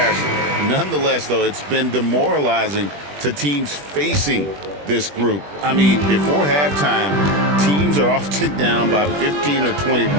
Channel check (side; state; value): left; late; 21 ms